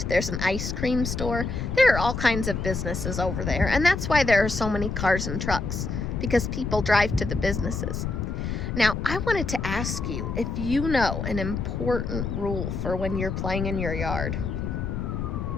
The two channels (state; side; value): noise; left; rumble, 3 dB below the sound